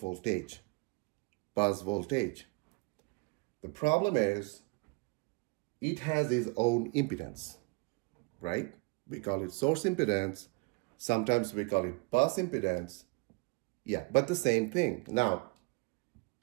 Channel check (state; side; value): quieter; left; 27.7 dB